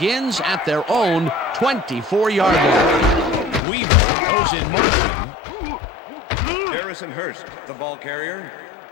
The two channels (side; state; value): right; drops out; at 3.6 s